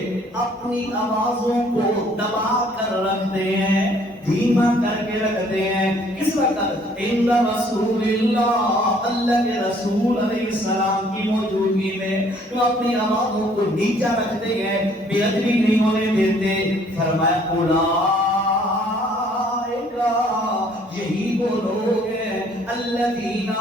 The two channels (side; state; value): both; normal; correlation 0.60